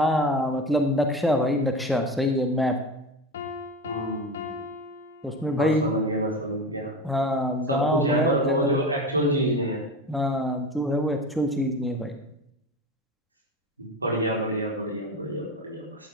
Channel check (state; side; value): normal; both; correlation 0.27